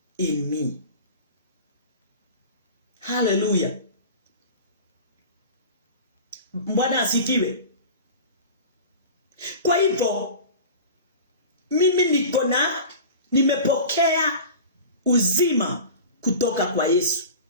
in me. Hallelujah. Bwana asifiwe. Kwa hivyo mimi nimepokea uzima kutoka kwa Yesu.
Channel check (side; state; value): both; inverted; correlation -0.35